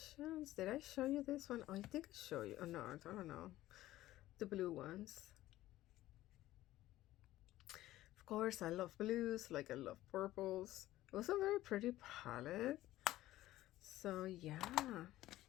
Did I show you this one? Oh, I think I showed you. Oh no, I don't know. The blue ones. Of course, I love blues, like I love purples. It was a very pretty palette. So yeah.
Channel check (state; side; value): quieter; right; 15.4 dB